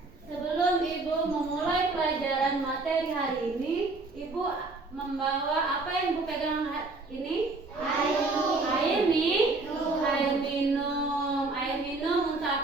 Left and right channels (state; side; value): quieter; left; 3.4 dB